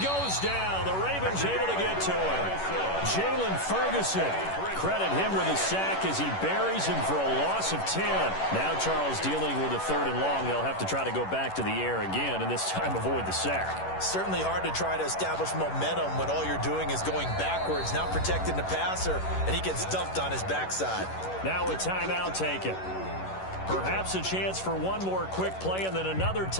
goes down. The Ravens able to get to him. Jalen Ferguson. Credit him with a sack as he buries him for a loss of 10. Now Charles dealing with a 3rd and long. They'll have to try to go back to the air again, and this time avoid the sack. Certainly hard to try to establish momentum when all you're doing is going backwards, not protecting the passer, and he gets dumped on his backside. Now a timeout taken. Perhaps a chance for one more quick play and then another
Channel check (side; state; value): right; late; 11 ms